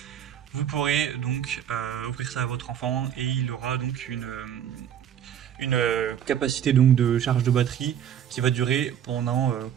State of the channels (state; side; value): quieter; left; 9.4 dB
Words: Vous pourrez donc offrir ça à votre enfant et il aura donc une capacité donc de charge de batterie qui va durer pendant